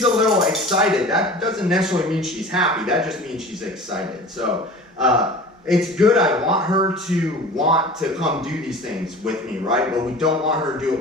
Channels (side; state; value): both; normal; correlation 0.39